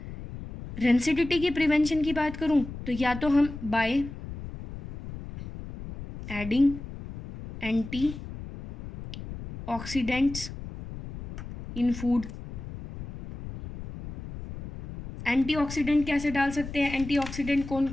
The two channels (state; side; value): noise; left; rumble, 11 dB below the sound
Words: रेंसिडिटी की प्रिवेंशन की बात करूँ तो या तो हम by adding anti oxidants in food. Antioxidant कैसे डाल सकते हैं? एंटीऑक्सीडेंट कौन